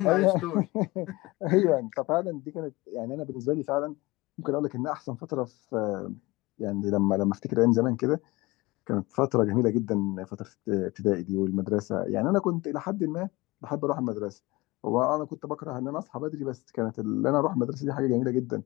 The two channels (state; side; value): quieter; right; 21.8 dB